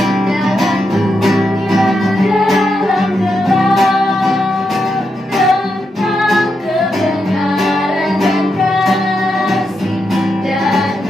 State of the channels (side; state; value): both; normal; correlation 0.84